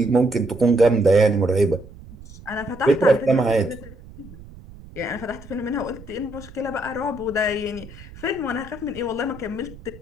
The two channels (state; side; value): noise; right; rumble, 18 dB below the sound